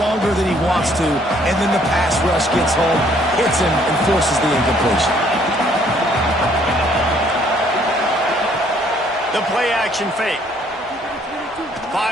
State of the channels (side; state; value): both; normal; correlation 0.63